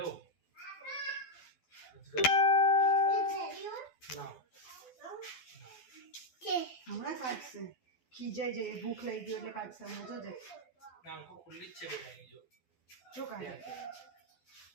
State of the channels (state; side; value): late; right; 12 ms